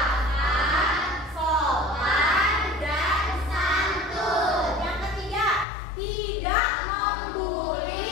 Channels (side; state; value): right; drops out; at 5.7 s